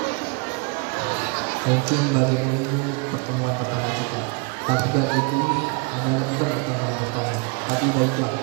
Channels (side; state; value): left; quieter; 31.5 dB